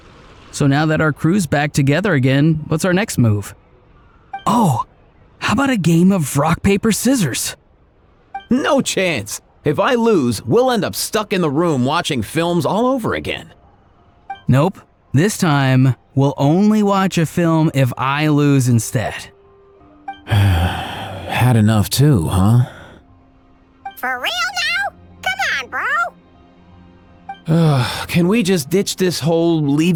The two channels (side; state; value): both; identical; correlation 1.00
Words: So now that our crew's back together again, what's our next move? Oh, how about a game of rock, paper, scissors? No chance. If I lose, we'll end up stuck in the room watching films all over again. Nope. This time, We'll only watch a film if I lose instead. Had enough too, huh? For real now? Come on, bro. Can we just ditch this whole